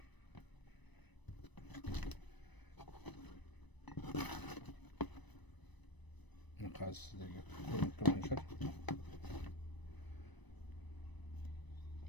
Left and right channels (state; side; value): late; right; 1.0 ms